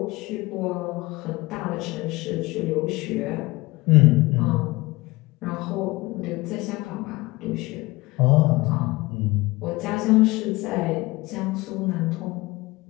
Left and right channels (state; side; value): quieter; right; 21.3 dB